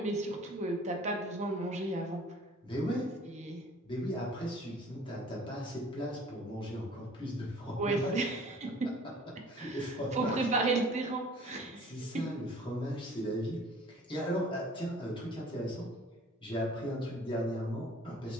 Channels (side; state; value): both; normal; correlation 0.50